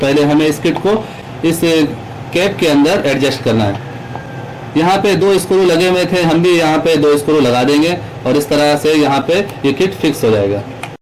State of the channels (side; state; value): both; identical; correlation 1.00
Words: हमें इस किट को इस कैप के अंदर एडजस्ट करना है। यहाँ पे 2 स्क्रू लगे हुए थे, हम भी यहाँ पे 2 स्क्रू लगा देंगे और इस तरह से यहाँ पे ये किट फिक्स हो जाएगा।